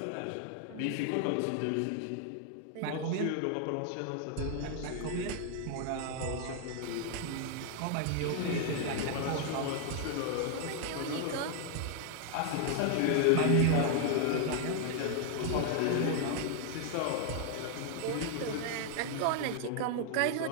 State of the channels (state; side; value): different; both; correlation 0.00